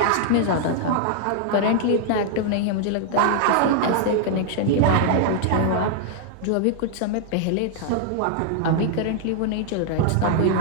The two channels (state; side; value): different; both; correlation -0.01